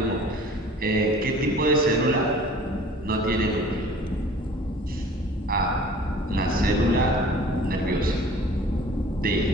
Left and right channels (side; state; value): both; normal; correlation 0.47